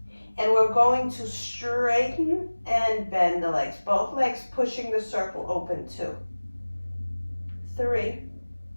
And we're going to straighten and bend the legs. Both legs pushing the circle open. 2, 3,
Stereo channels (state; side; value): inverted; both; correlation -1.00